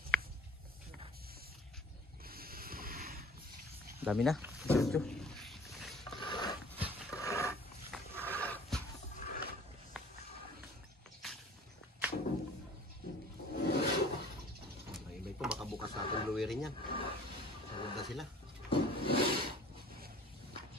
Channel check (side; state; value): both; normal; correlation 0.49